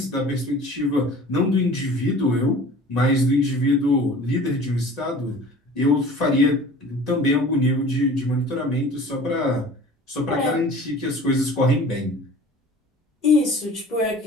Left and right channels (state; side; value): normal; both; correlation 0.44